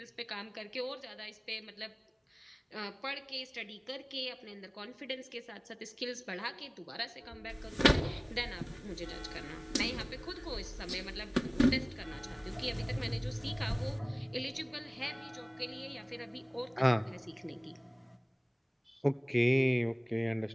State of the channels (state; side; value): identical; both; correlation 1.00